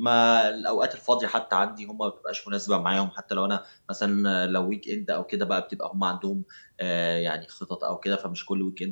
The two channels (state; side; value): inverted; both; correlation -1.00